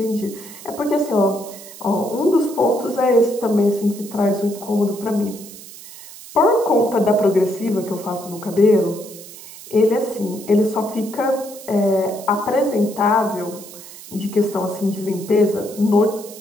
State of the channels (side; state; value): right; noise; hiss, 16 dB below the sound